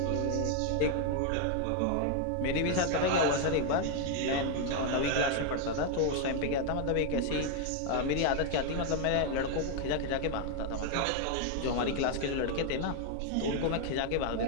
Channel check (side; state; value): both; different; correlation 0.00